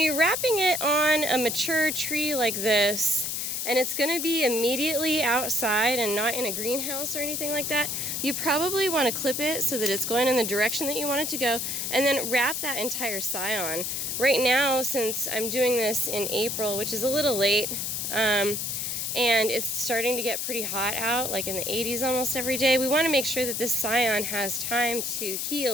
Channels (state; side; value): noise; left; hiss, 2 dB below the sound